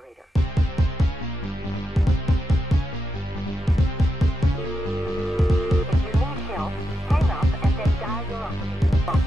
If you need help, hang up and then dial your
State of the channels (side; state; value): both; normal; correlation 0.86